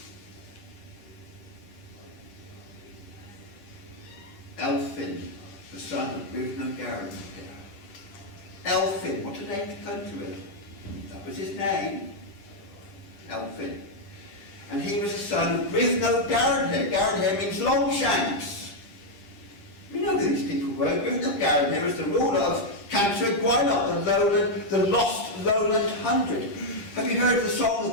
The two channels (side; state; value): right; late; 10 ms